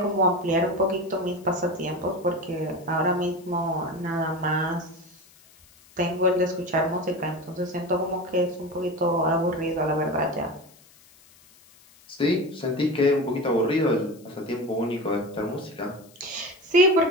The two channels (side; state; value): left; noise; hiss, 27 dB below the sound